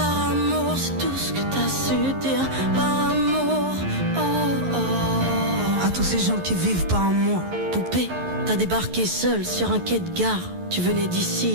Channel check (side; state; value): left; late; 11 ms